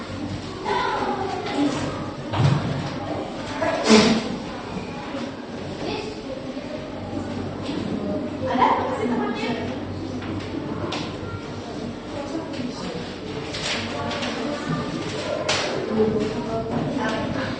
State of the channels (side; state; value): both; identical; correlation 1.00